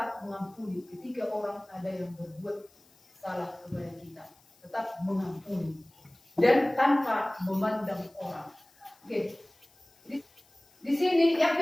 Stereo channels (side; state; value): left; noise; hiss, 30 dB below the sound